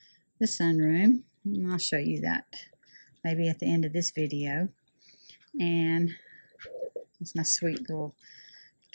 the sunroom. And I'll show you that maybe at the end of this video. And that's my sweet little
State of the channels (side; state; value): both; inverted; correlation -1.00